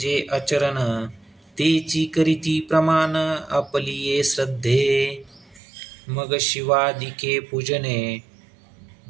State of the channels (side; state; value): left; drops out; at 5.6 s